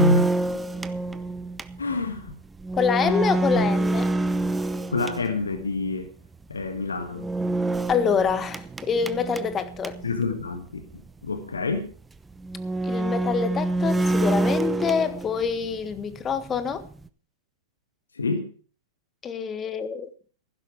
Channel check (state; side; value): normal; both; correlation 0.48